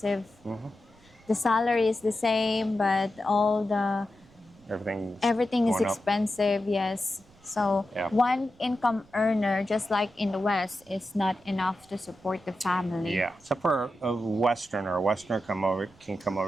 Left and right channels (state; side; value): noise; right; rumble, 28 dB below the sound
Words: The salary is the same, but all the Everything's everything is going up. expensive. Yes, so Yeah. one income earner, just like in the West, is not enough to support the family. Yeah, except for a Westerner. A Westerner can come